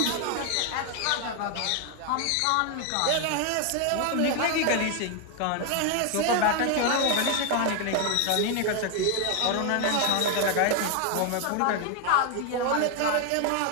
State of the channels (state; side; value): different; both; correlation 0.01